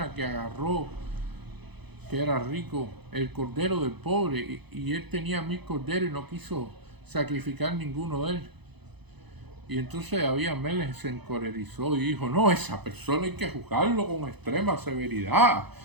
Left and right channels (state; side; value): late; left; 0.99 ms